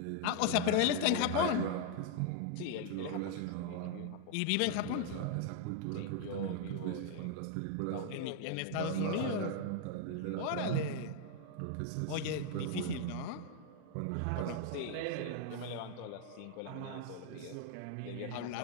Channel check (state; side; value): different; both; correlation 0.00